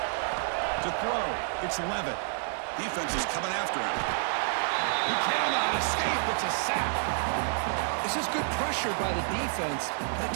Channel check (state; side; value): silent; left; 57 dB below the other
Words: To throw, it's Levitt. Defense is coming after him. He cannot escape. It's a sack. This is good pressure by the defense, but it